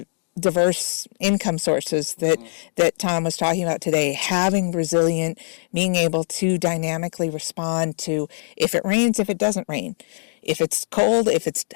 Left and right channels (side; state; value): right; silent; digital silence